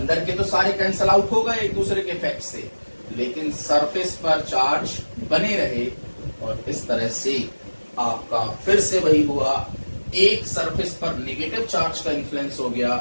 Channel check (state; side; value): inverted; both; correlation -1.00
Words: के तो सारे कैंसल आउट हो गए एक दूसरे के इफेक्ट से, लेकिन सरफेस पर चार्ज बने रहे, और इस तरह से आपका फिर से वही हुआ, एक सरफेस पर नेगेटिव चार्ज का इन्फ्लुएंस हो